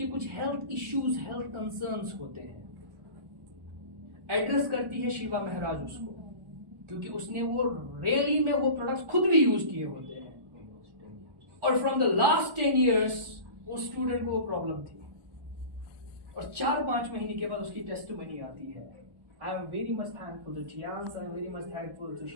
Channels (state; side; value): late; left; 1.1 ms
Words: कुछ हेल्थ इश्यूज, हेल्थ कंसर्न्स होते हैं, एड्रेस करती है शिवा महाराज उसको, क्योंकि उसने वो रियली में वो प्रोडक्ट्स खुद भी यूज किए होते हैं, और फ्रॉम द लास्ट 10 years वो स्टूडेंट को वो प्रॉब्लम थी, और 4-5 महीने के बाद उसकी टेस्टिमनी आती है। I am very much thankful to Tians, I am very much thankful to